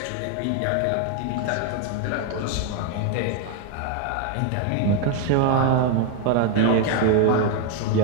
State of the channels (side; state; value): both; different; correlation 0.01